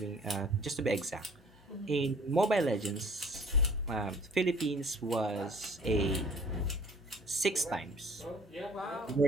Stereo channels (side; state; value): both; normal; correlation 0.53